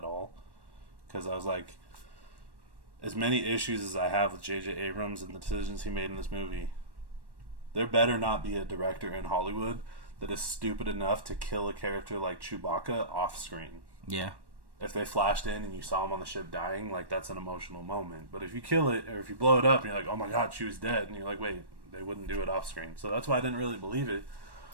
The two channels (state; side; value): late; left; 1.1 ms